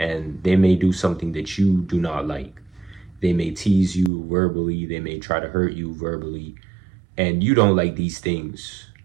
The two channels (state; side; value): drops out; left; at 4.1 s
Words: they may do something that you do not like. They may tease you verbally, they may try to hurt you verbally, and you don't like these things.